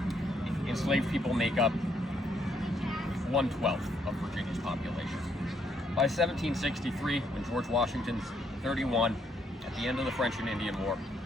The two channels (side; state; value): both; normal; correlation 0.72